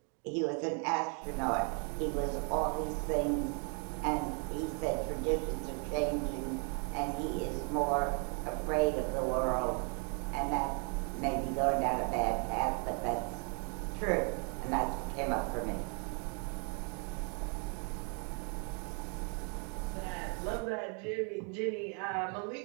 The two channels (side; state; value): left; quieter; 38.1 dB